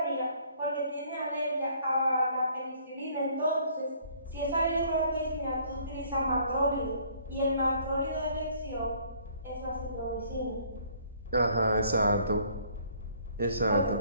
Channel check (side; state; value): both; inverted; correlation -0.60